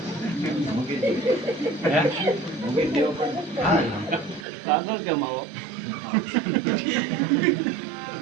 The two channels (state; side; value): drops out; left; at 4.5 s